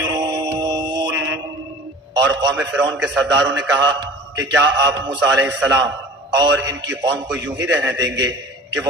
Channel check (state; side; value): normal; both; correlation 0.41